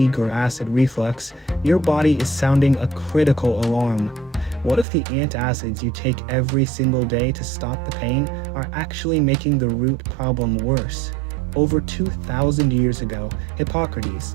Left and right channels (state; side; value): drops out; left; at 4.9 s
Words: or acid reflux, your body is sounding a critical alarm. What if the antacids you take every single day to stop the pain are actually making the root problem worse? Over 2,000 years ago, Hippocrates,